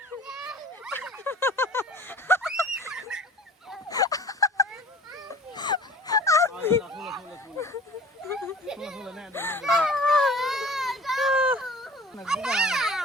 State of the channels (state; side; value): normal; both; correlation 0.45